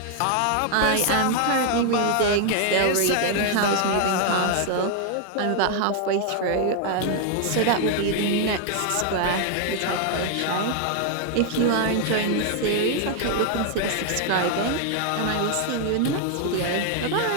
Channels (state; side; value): different; both; correlation 0.00